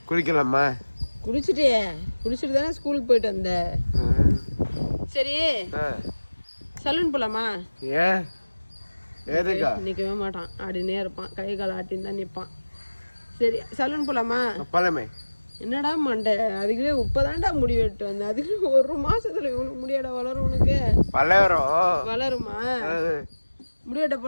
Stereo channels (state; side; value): inverted; both; correlation -1.00